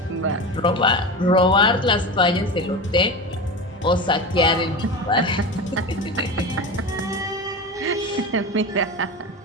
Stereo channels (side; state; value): both; normal; correlation 0.26